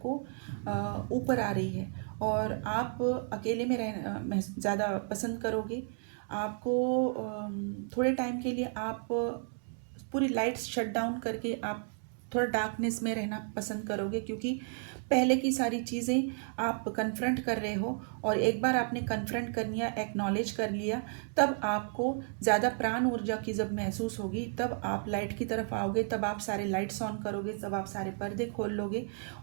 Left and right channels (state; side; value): silent; left; 56 dB below the other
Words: ऊपर आ रही है और आप अकेले में रहना ज़्यादा पसंद करोगे। आपको थोड़े टाइम के लिए आप पूरी लाइट्स शट डाउन करके आप थोड़ा डार्कनेस में रहना पसंद करोगे, क्योंकि पहले की सारी चीज़ें आप कन्फ्रंट कर रहे हो और एक बार आपने कन्फ्रंट कर लिया, एक्नॉलेज कर लिया, तब आपको ज़्यादा प्राण ऊर्जा की जब महसूस होगी तब आप लाइट की तरफ आओगे, तब आप सारे लाइट्स ऑन करोगे, तब आप सारे पर्दे खोल लोगे